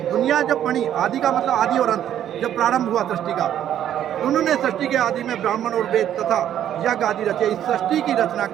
दुनिया जब बनी, आदि का मतलब आदि और अंत, जब प्रारंभ हुआ सृष्टि का, उन्होंने सृष्टि के आदि में ब्राह्मण और वेद तथा यज्ञ आदि रचे। इस सृष्टि की रचना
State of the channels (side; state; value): left; quieter; 10.7 dB